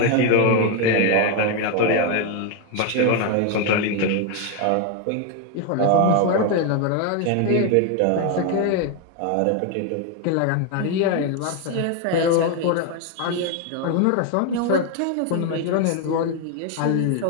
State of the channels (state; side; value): different; both; correlation 0.01